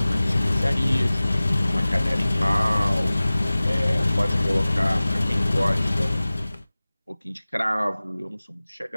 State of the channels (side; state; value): both; inverted; correlation -0.98